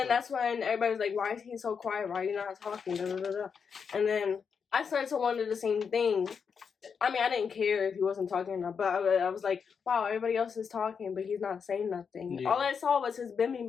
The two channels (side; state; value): right; quieter; 6.3 dB